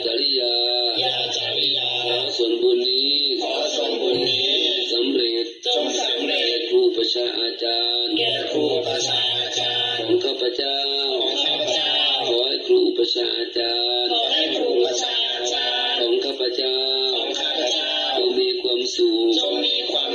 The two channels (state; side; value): identical; both; correlation 1.00